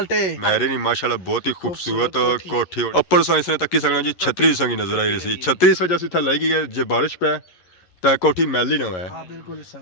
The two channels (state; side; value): late; right; 11 ms